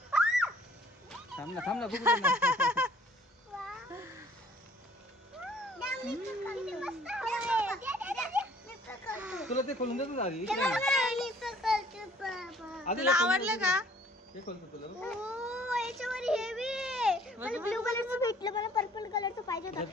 थांब ना बघू दे ना. तुला ते खोलून देतो आधी. तुला आवडलं का? हे खोलतो तुला. याच्यावर हेवी मला ब्लू कलरचं भेटलं, मला पर्पल कलरचं पाहिजे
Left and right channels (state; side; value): normal; both; correlation 0.56